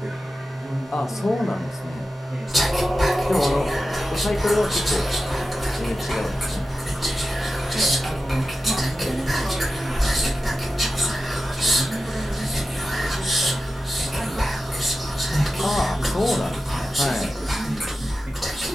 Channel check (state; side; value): normal; both; correlation 0.92